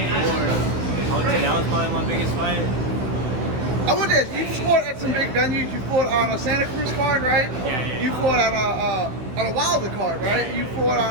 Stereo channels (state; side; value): late; left; 16 ms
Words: before. I would say that was probably my biggest fight. I would ask, you fought at some big venues. You fought on a Santa Cruz card, right? Yeah. You fought on a Wilder card, right? You fought